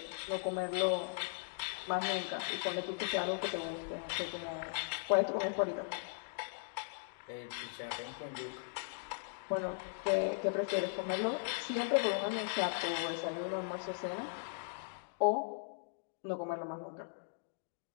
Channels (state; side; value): silent; right; digital silence